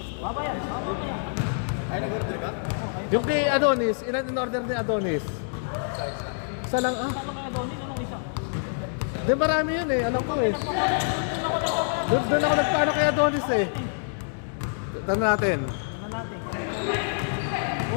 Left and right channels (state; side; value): silent; right; digital silence